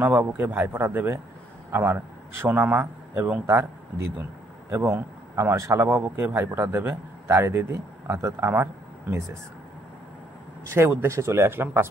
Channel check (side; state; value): both; normal; correlation 0.68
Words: ভাইফোঁটা দেবে আমার সোনামা এবং তার দিদুন, এবং আমার শালাবাবুকে ভাইফোঁটা দেবে তারই দিদি অর্থাৎ আমার মিসেস। সেই উদ্দেশ্যে চলে আসলাম